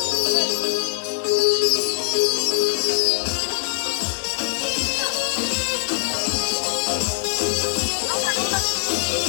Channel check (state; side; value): silent; right; digital silence